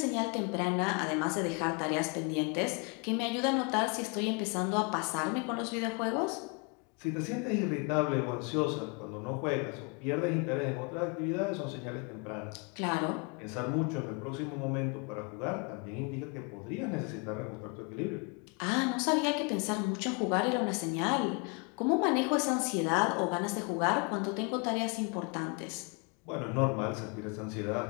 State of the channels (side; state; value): right; quieter; 33.0 dB